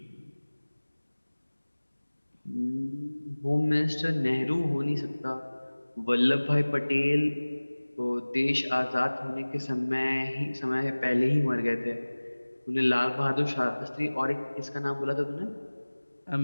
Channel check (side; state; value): both; inverted; correlation -1.00